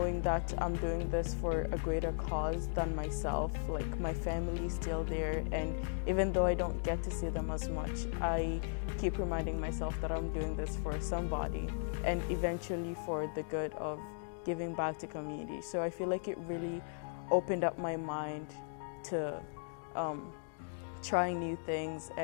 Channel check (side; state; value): right; silent; digital silence